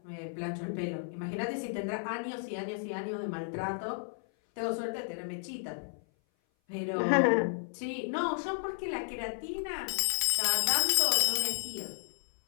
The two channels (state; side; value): silent; right; 56 dB below the other